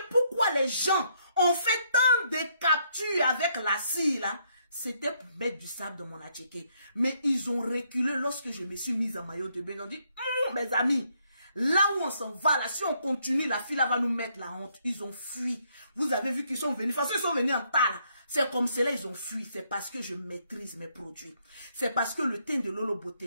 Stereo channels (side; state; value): both; inverted; correlation -0.72